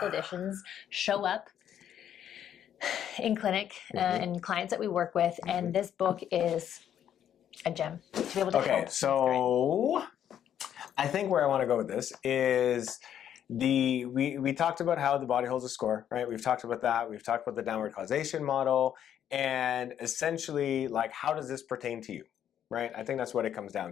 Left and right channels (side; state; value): right; quieter; 9.9 dB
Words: conditions show up in clinic and clients that we work with. And this book is a gem to be able to help. So I think where I want to go with this is we talked about how the body holds a score, right? We've talked about that. We've talked about the downward causation model, and essentially, like, how does this pertain to you, right? I think that's what it comes